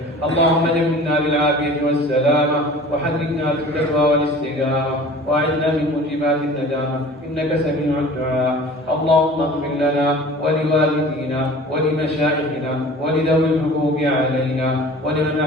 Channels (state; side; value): normal; both; correlation 0.43